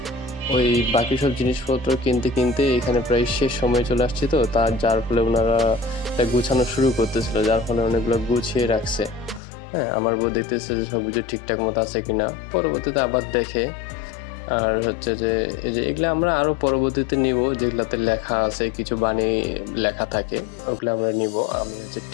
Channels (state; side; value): drops out; right; at 9.4 s